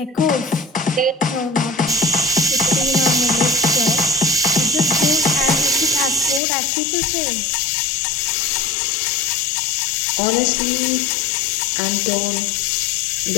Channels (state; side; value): drops out; right; at 6.4 s